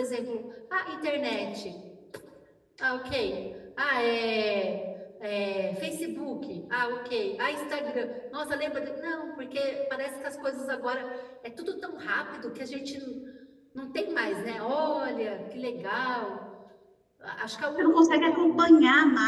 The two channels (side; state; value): both; identical; correlation 1.00